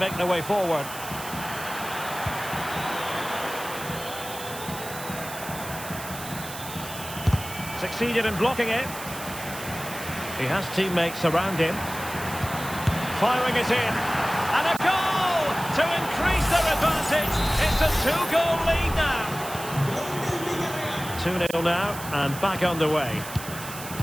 their way forward. Succeeded in blocking it. He has teammates around him. Firing it in. And a goal to increase their advantage. It's a 2-goal lead now. 2-0 now and back underway.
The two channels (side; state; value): right; noise; hiss, 11 dB below the sound